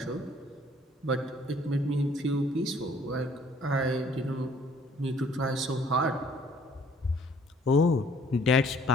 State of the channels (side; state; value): both; normal; correlation 0.59